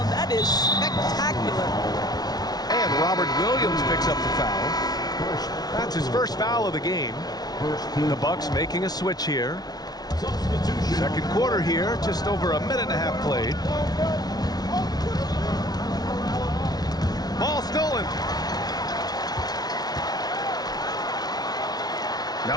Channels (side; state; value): right; late; 0.19 ms